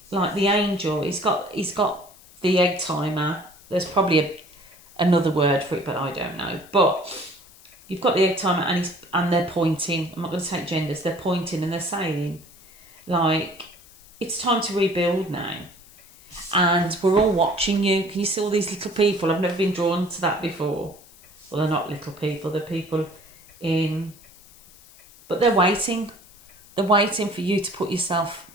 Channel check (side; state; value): left; noise; hiss, 24 dB below the sound